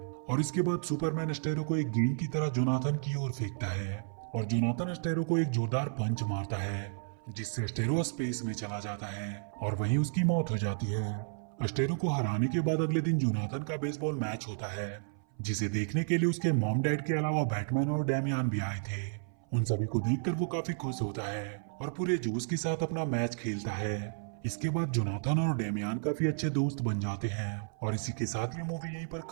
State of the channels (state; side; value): silent; left; 55 dB below the other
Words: इसके बाद सुपरमैन अस्टेरो को एक गेंद की तरह जोनाथन की ओर फेंकता है और जोनाथन अस्टेरो को एक जोरदार पंच मारता है, जिससे अस्टेरो स्पेस में चला जाता है और वहीं उसकी मौत हो जाती है। अस्टेरो को हराने के बाद अगले दिन जोनाथन का बेसबॉल मैच होता है, जिसे देखने के लिए उसके मॉम डैड के अलावा बैटमैन और डेमियन भी आए थे। उन सभी को देखकर वो काफी खुश होता है और पूरे जोश के साथ अपना मैच खेलता है। इसके बाद जोनाथन और डेमियन काफी अच्छे दोस्त बन जाते हैं और इसी के साथ ये मूवी यहीं पर